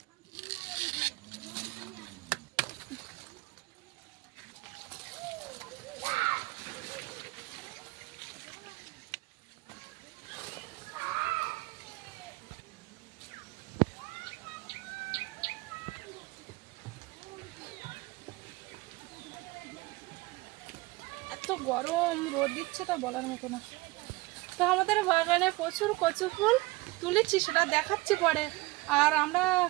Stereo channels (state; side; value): quieter; left; 21.6 dB